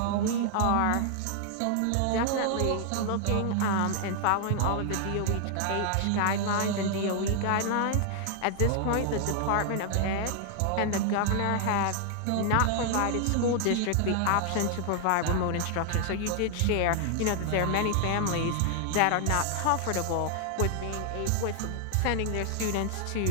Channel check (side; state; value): both; different; correlation 0.00